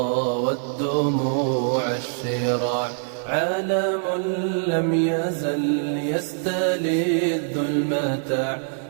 والدموع الشراع عالم لم يزل يستلذ المتاع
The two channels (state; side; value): silent; left; 59 dB below the other